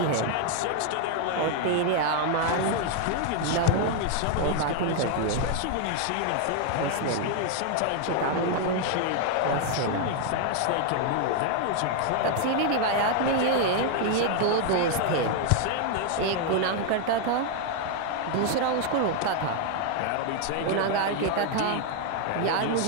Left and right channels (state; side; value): different; both; correlation 0.00